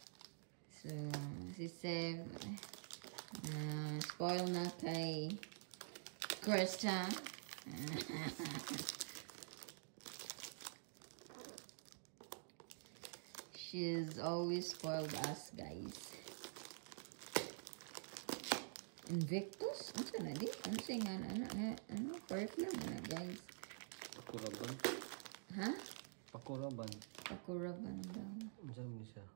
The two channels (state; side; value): silent; left; digital silence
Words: So, si Sev spoil na kay Krista. She's always spoiled us, guys. Invictus? Ano sa na di? Ano sa nga ano? Perfume na, guys. Pakuraban. Ha? Pakuraban. Pakuraban daw. Ano mo siya?